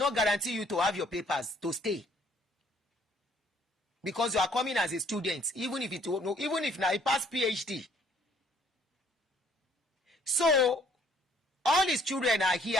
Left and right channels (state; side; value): normal; both; correlation 0.62